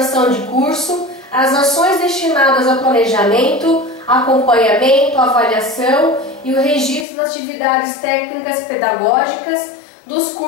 de curso as ações destinadas ao planejamento, acompanhamento, avaliação e o registro das atividades técnicas pedagógicas dos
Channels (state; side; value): drops out; right; at 7.1 s